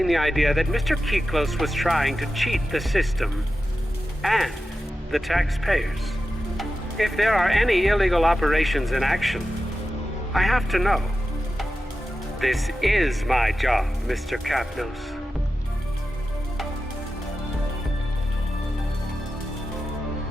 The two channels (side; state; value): both; normal; correlation 0.92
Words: the idea that Mr. Kiklos was trying to cheat the system and the taxpayers. If there are any illegal operations in action, I have to know. This is my job, Mr. Capnose.